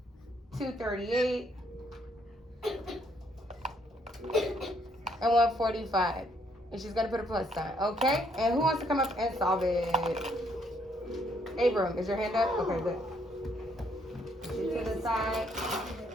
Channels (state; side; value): normal; both; correlation 0.70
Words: 238, and 145. And she's gonna put a plus sign, okay? And who wants to come up and solve it? Abram, is your hand up? Okay, good. To the side.